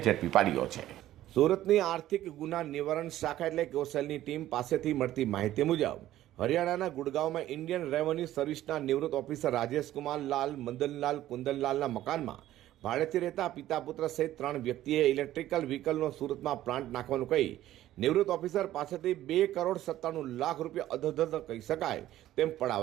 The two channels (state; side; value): quieter; left; 13.8 dB